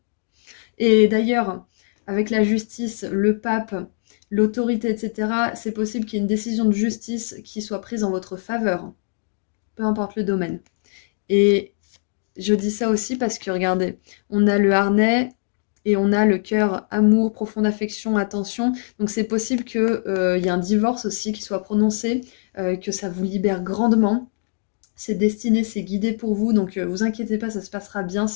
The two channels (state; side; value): silent; right; digital silence